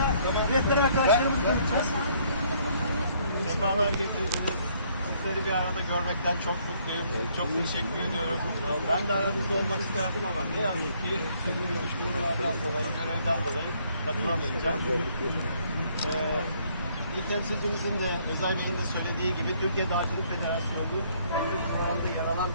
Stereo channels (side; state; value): both; inverted; correlation -0.66